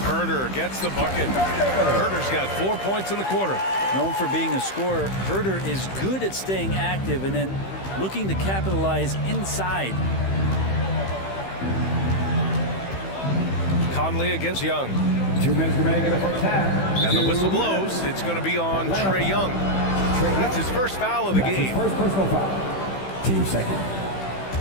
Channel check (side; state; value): right; late; 15 ms